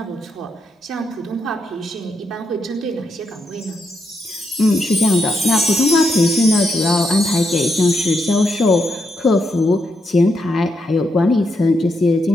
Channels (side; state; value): both; normal; correlation 0.81